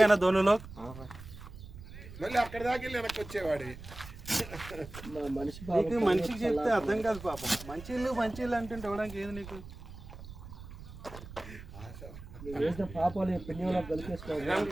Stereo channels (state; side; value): noise; right; rumble, 14 dB below the sound